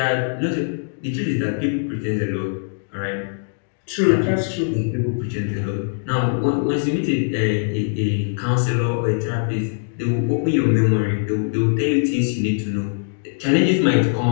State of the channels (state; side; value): silent; right; digital silence